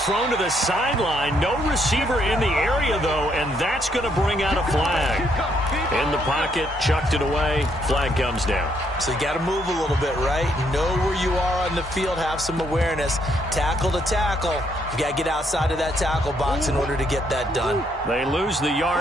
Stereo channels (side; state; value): both; normal; correlation 0.72